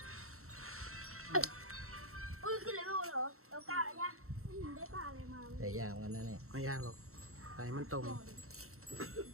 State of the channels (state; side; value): late; left; 0.63 ms